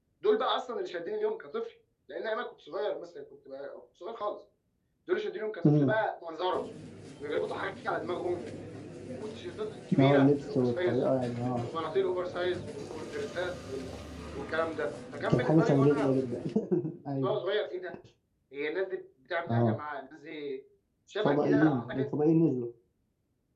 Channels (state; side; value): identical; both; correlation 1.00